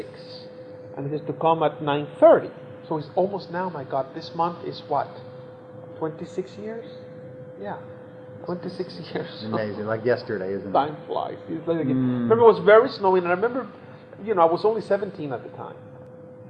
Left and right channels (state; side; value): identical; both; correlation 1.00